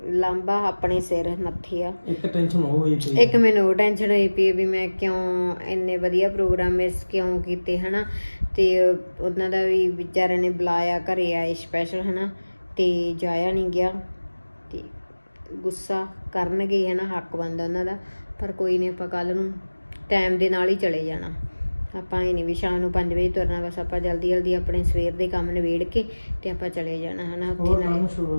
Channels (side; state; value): both; inverted; correlation -1.00